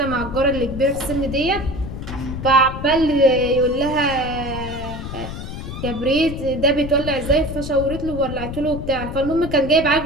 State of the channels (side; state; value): left; noise; rumble, 8 dB below the sound